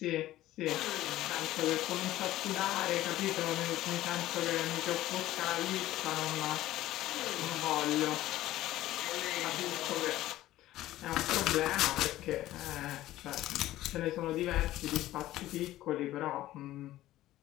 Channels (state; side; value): quieter; right; 15.1 dB